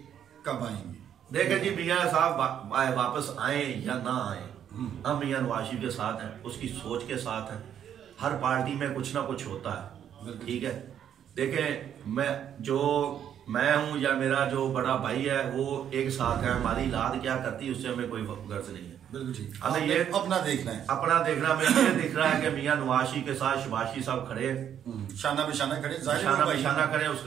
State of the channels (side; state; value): left; quieter; 9.5 dB